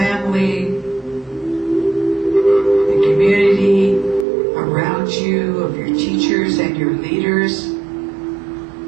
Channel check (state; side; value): drops out; left; at 4.2 s